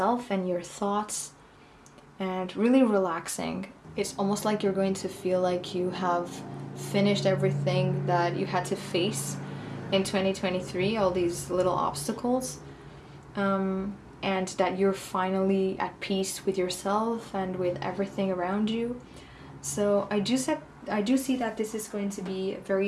and your thoughts and really relaxing. It's almost like you're going to feel like you have finished everything that you had to face in 2023, all these little obstacles, and that you're finally at peace with yourself and with everything around you. So I do see that this is going to be a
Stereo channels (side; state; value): both; identical; correlation 1.00